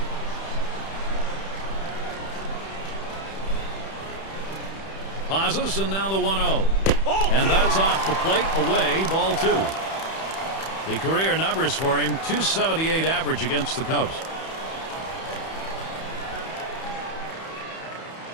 Pauses, and now the 1-0. And that's off the plate, away, ball 2. The career numbers for him, .278 average against the Cubs.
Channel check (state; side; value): late; right; 31 ms